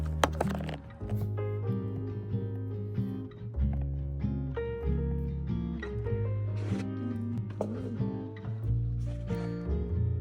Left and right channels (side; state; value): both; identical; correlation 1.00